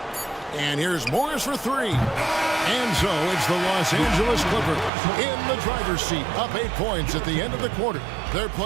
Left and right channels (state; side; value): drops out; left; at 4.9 s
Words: And here's Morris for 3. And so it's the Los Angeles Clippers in the driver's seat, up 8 points at the end of the quarter. They're